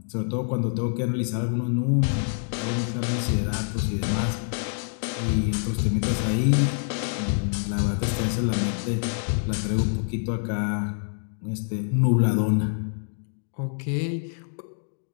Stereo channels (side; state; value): right; silent; 61 dB below the other